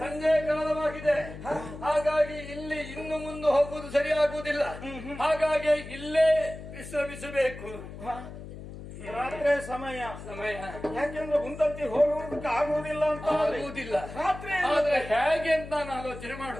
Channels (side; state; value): left; noise; hum, 12 dB below the sound